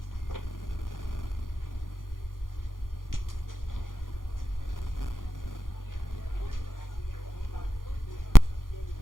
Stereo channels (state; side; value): late; right; 0.90 ms